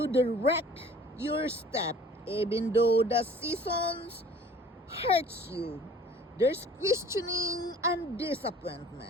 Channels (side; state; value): both; normal; correlation 0.49